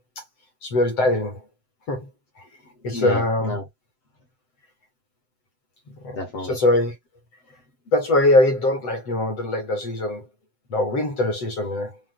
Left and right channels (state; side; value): late; right; 7.8 ms